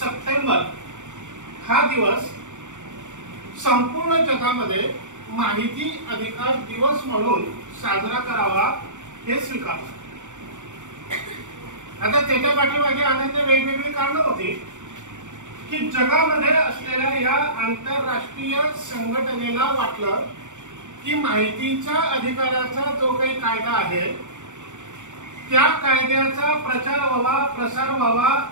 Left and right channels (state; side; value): late; left; 0.85 ms